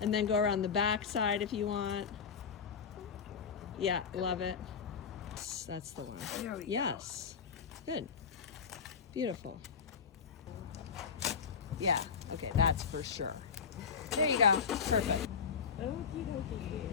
And then go around the back side if you want. Yeah, love it. That's the one. There we go. Yes. Good. Beautiful. Yeah. Okay, that's for sure. There you go. Perfect. Okie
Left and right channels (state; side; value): quieter; right; 6.3 dB